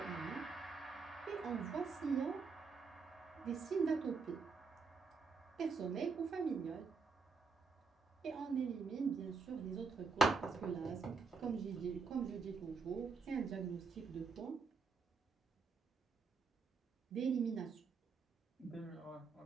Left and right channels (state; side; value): quieter; left; 4.8 dB